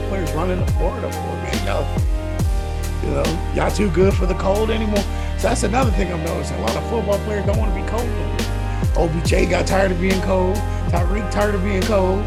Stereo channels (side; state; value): both; identical; correlation 1.00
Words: players running to Florida for, man? Y'all too good for the cold anymore. So that's another thing I'm noticing. A lot of football players don't want to be cold no more. OBJ got tired of being cold. TYREEK tired of being